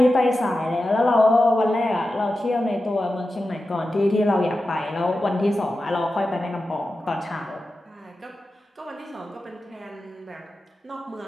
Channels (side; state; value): both; normal; correlation 0.92